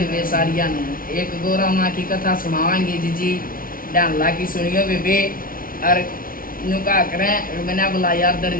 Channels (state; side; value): late; right; 0.42 ms